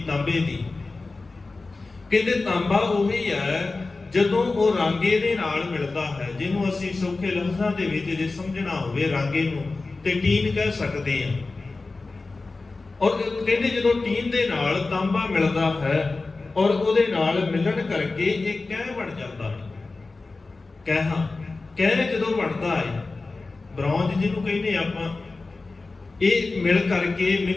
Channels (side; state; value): right; quieter; 3.6 dB